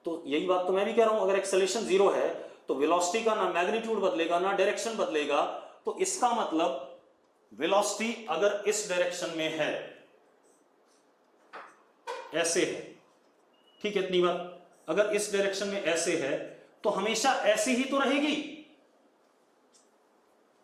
तो यही बात तो मैं भी कह रहा हूं, अगर एक्सेलरेशन 0 है तो वेलोसिटी का ना मैग्नीट्यूड बदलेगा ना डायरेक्शन बदलेगा। तो इसका मतलब वेलोसिटी अगर इस डायरेक्शन में है, ऐसे है, ठीक है, इतनी बात। अगर इस डायरेक्शन में ऐसे है तो हमेशा ऐसी ही तो रहेगी,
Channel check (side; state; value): both; identical; correlation 1.00